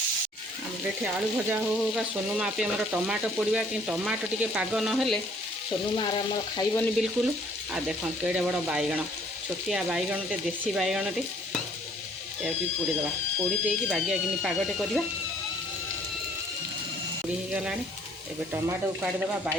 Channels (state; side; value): normal; both; correlation 0.59